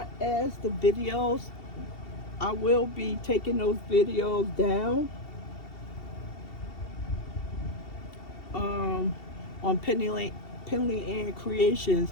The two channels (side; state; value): right; late; 2.7 ms